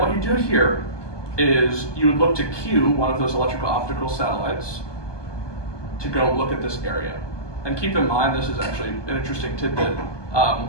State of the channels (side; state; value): right; late; 1.2 ms